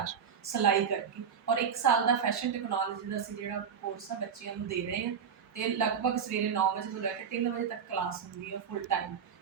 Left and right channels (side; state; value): left; quieter; 7.1 dB